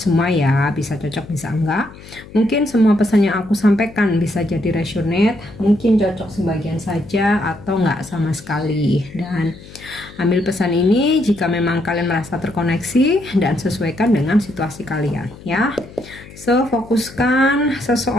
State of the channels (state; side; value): noise; left; hum, 19 dB below the sound